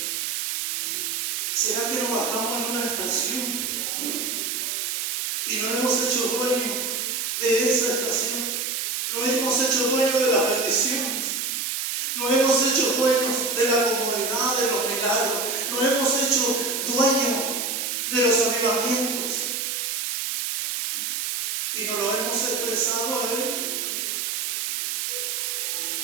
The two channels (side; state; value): right; noise; hiss, 1 dB below the sound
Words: ¿Será que nos bajamos en una estación y nos hemos hecho dueños de esa estación? Nos hemos hecho dueños de las bendiciones. Nos hemos hecho dueños de la comodidad, de los milagros. Nos hemos hecho dueños de los avivamientos. Y nos lo hemos expresado a Él.